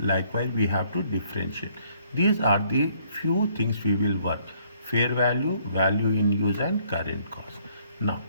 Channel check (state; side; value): inverted; both; correlation -0.65